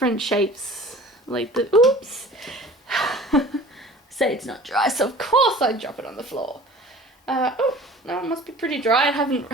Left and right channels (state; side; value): normal; both; correlation 0.44